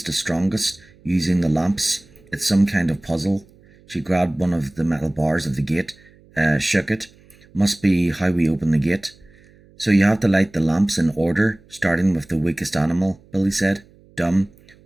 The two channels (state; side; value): noise; right; hum, 28 dB below the sound